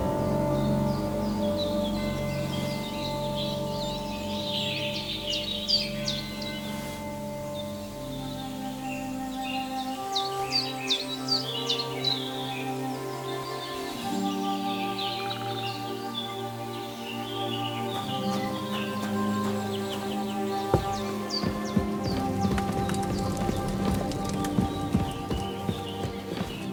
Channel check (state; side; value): identical; both; correlation 1.00